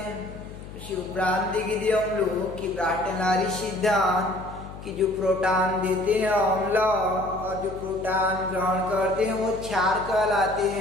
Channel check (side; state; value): left; noise; hum, 14 dB below the sound